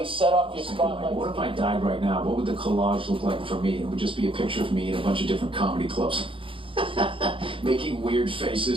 set off your spotlight. What if I died right now? What would the collage look like for me? It would just be a picture of me in a bunch of different comedy clubs. Making weird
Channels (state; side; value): late; left; 0.25 ms